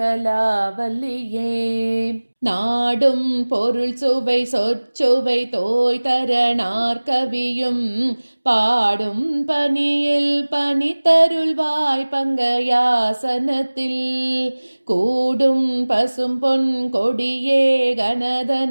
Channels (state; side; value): inverted; both; correlation -1.00